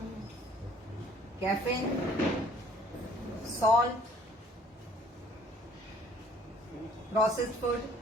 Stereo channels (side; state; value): both; normal; correlation 0.56